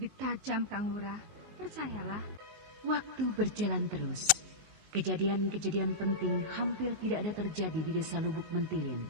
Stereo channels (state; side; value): late; left; 19 ms